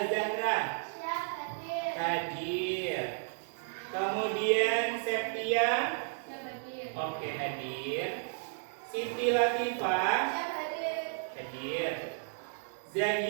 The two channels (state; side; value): silent; left; digital silence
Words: hadir. Kemudian Septia, oke, hadir. Siti Latifah, hadir.